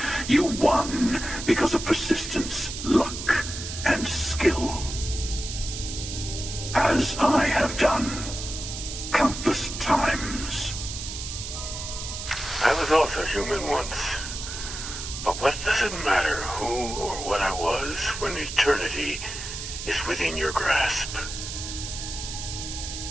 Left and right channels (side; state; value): right; noise; hiss, 7 dB below the sound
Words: You won because of persistence, luck, and skill. As I have done countless times. I was also human once. But what does it matter who or what I was when eternity is within your grasp?